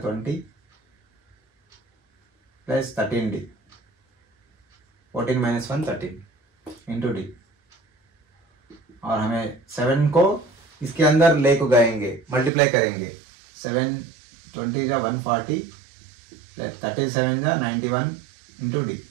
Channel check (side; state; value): left; drops out; at 12.5 s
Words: 20 plus 13d 14 minus 1 13 into D और हमें 7 को इसके अंदर ले को गएंगे, मल्टीप्लाई करेंगे। 7 20 जा 140 प्लस 37 जा 91 इंटू डी